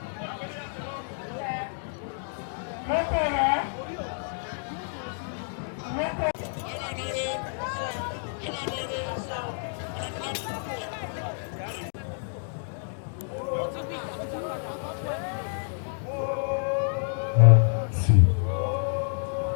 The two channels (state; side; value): silent; right; digital silence